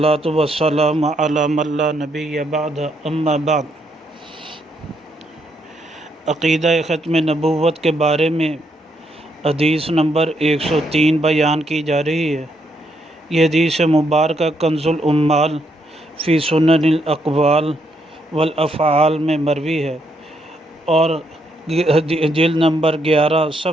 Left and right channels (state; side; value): normal; both; correlation 0.75